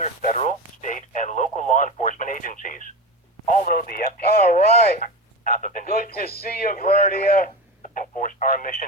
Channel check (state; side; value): normal; both; correlation 0.24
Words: federal, state, and local law enforcement agencies. Although the FTC... All right. Good to see you, Verdia. ...enforce our